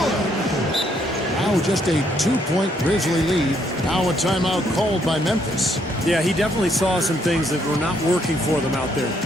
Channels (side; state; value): both; normal; correlation 0.71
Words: Now just a 2-point Grizzly lead. Now a timeout called by Memphis. Yeah, he definitely saw some things that were not working for them out there.